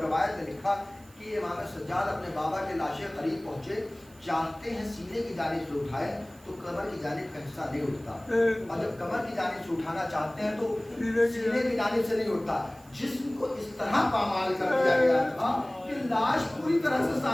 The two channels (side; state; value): right; noise; hiss, 26 dB below the sound